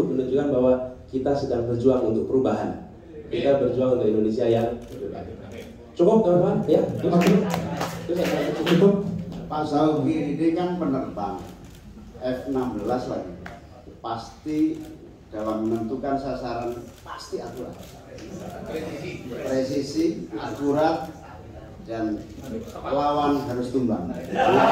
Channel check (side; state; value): both; identical; correlation 1.00